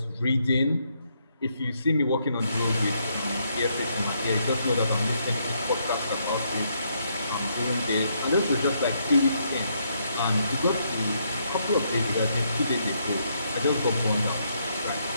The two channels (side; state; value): both; inverted; correlation -0.75